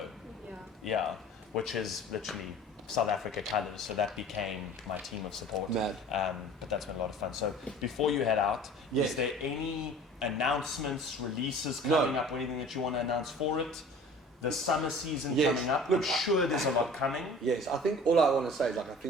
Yeah, which is literally South Africa colours. So that became my team of support. Mad. But that's been a lot of fun. So before you head out, Yes. is there any announcements, releases coming up or anything that you want to announce for it? The summer season coming up. Look, I'm sure there's a lot coming. Yes, I think all I want to say is like I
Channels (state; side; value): normal; both; correlation 0.44